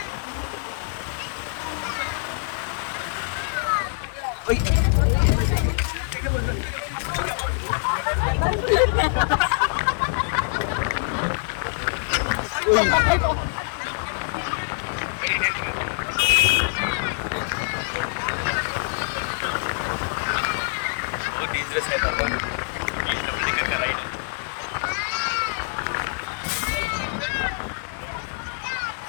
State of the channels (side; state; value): right; silent; digital silence